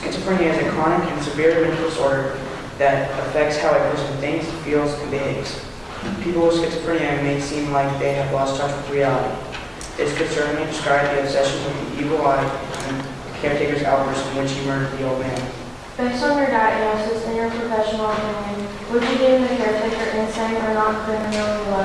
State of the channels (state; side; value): identical; both; correlation 1.00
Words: is a chronic and severe mental disorder that affects how a person thinks, feels, and behaves. People with schizophrenia may seem like they have lost touch with reality. This could certainly describe the obsession with the evil eye and the caretaker's outburst in which he murdered the old man. Based on your diagnosis and your professional opinion, would you deem the caretaker insane or not criminally